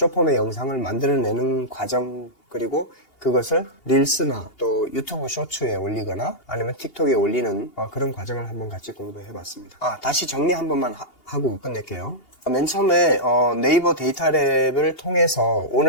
영상을 만들어내는 과정 그리고 그것을 릴스나 또 유튜브 쇼츠에 올리거나 아니면 틱톡에 올리는 그런 과정을 한번 같이 공부해 봤습니다. 다시 정리 한 번만 하고 끝낼게요. 맨 처음에 네이버 데이터랩을 통해서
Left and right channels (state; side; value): late; right; 2.8 ms